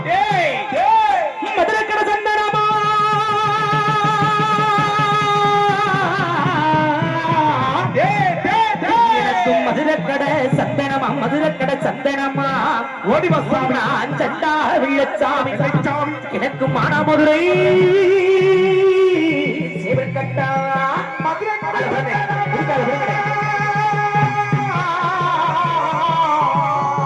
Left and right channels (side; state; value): both; identical; correlation 1.00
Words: மதுரக்கட சந்தனமா மதுரக்கட சந்தனமா மதுரக்கட சந்தனமா ஓடி வசாமி சண்டா வெள்ளச்சாமி எனக்கு மானாமதுரை சேவற்கட்டா